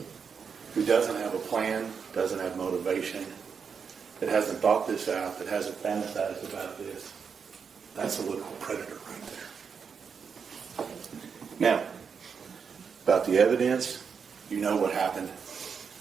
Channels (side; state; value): left; quieter; 6.2 dB